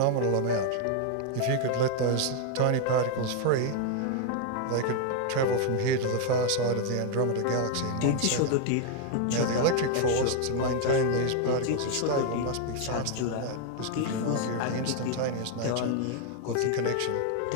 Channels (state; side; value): different; both; correlation 0.00